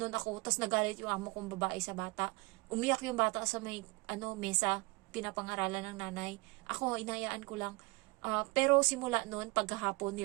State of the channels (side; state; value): left; quieter; 25.2 dB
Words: ako. Tapos nagalit yung amo kong babae sa bata. Umiyak yung bata sa may mesa, pinapangaralan ng nanay. Ako, inayaan ko lang. Pero simula noon, pagkahapon,